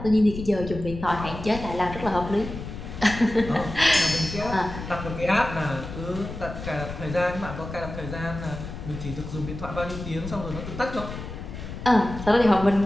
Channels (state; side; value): noise; left; rumble, 9 dB below the sound